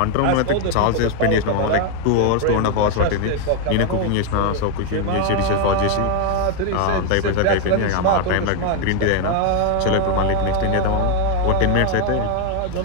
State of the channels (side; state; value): both; different; correlation 0.01